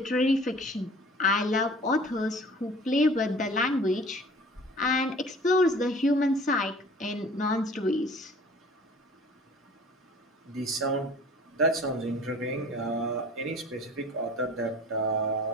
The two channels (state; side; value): normal; both; correlation 0.47